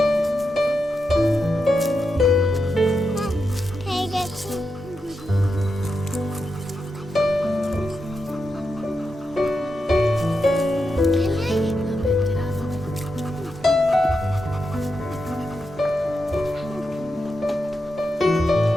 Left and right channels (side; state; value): both; normal; correlation 0.87